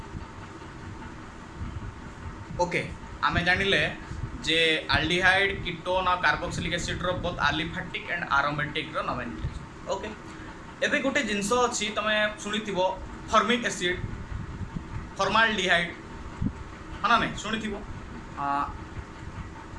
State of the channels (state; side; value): identical; both; correlation 1.00